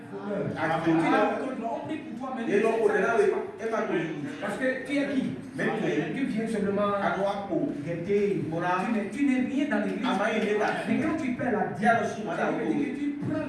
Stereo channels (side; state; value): both; identical; correlation 1.00